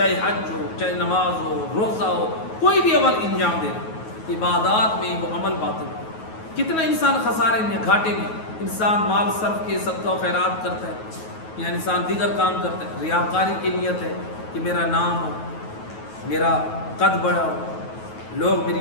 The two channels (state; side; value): late; right; 9.3 ms